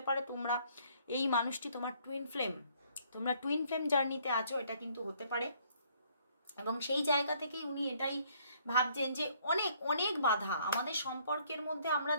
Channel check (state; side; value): inverted; both; correlation -0.64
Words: পারে তোমরা এই মানুষটি তোমার টুইন ফ্লেম, তোমরা টুইন ফ্লেম জার্নিতে আছো, এটা কিন্তু হতে পারে। এবং সেই জায়গা থেকেই উনি এটাই ভাবছেন যে অনেক অনেক বাধা আমাদের সম্পর্কের মধ্যে, আমরা